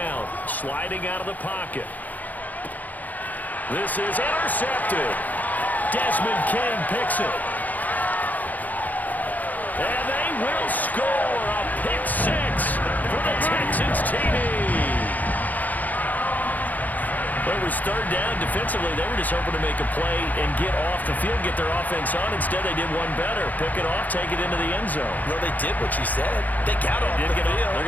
Sliding out of the pocket. This is intercepted. Desmond King picks it. And they will score a pick 6 for the Texans TD. Well, it was 3rd down. Defensively, they were just hoping to make a play and get off the field, get their offense on. Instead, they did one better. Pick it off, take it into the end zone. Well, they did what you said. They got off the field. They're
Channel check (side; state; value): right; late; 0.081 ms